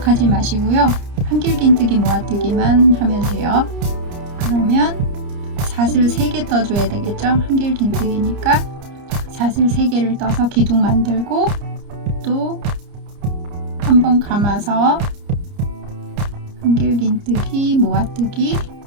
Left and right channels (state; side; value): late; left; 30 ms